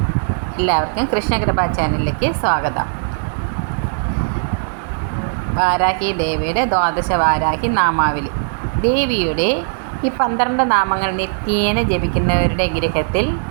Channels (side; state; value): left; silent; digital silence